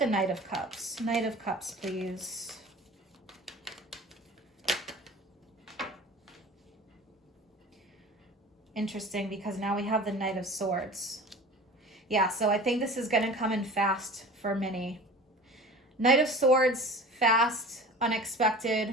Knight of Cups. Knight of Cups, please. Interesting, because now we have the Knight of Swords. Yeah, so I think this is going to come in fast for many. Knight of Swords, fast,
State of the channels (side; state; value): both; normal; correlation 0.39